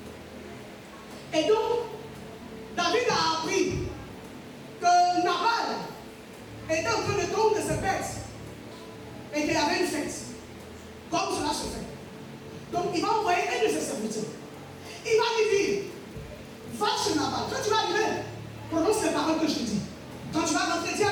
Et donc, David a appris que Nabal était en train de tondre ses bêtes et qu'il y avait une fête. Comme cela se fait. Donc, il va envoyer un de ses serviteurs. Il va lui dire, va chez Nabal. Quand tu vas arriver, prononce les paroles que je te dis. Quand tu vas rentrer, dis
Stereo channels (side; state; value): both; identical; correlation 1.00